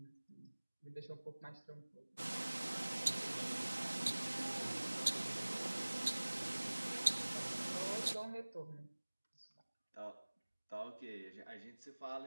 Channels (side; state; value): both; inverted; correlation -1.00